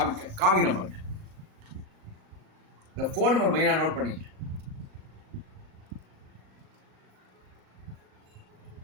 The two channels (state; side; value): late; left; 37 ms